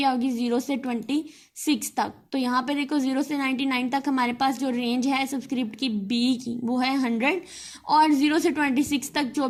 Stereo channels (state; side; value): identical; both; correlation 1.00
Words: होगी 0 से 26 तक। तो यहाँ पे देखो 0 से 99 तक हमारे पास जो रेंज है सबस्क्रिप्ट की बी की वो है 100 और 0 से 26 तक जो